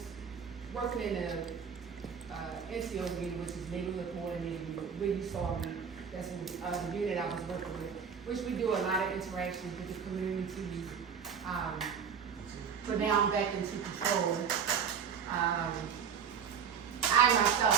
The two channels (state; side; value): quieter; left; 7.1 dB